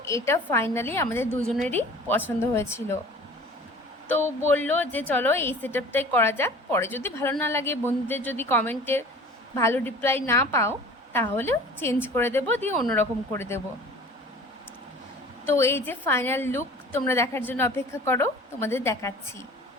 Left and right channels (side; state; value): both; normal; correlation 0.44